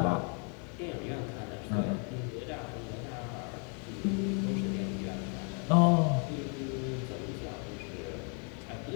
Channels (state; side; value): quieter; right; 38.8 dB